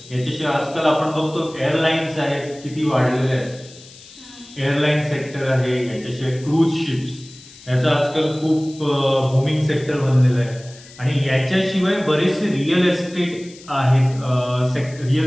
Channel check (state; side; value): noise; left; hiss, 21 dB below the sound